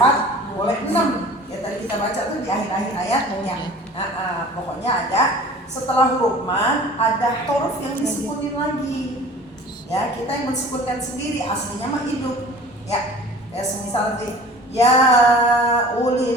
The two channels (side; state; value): both; normal; correlation 0.44